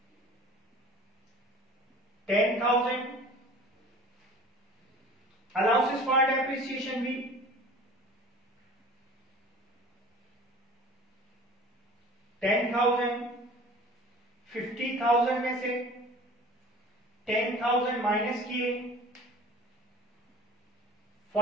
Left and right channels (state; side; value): normal; both; correlation 0.44